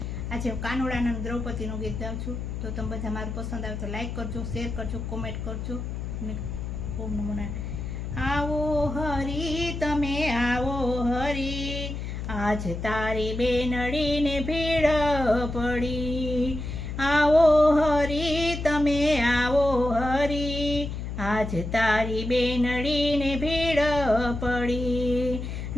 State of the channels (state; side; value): noise; left; hum, 5 dB below the sound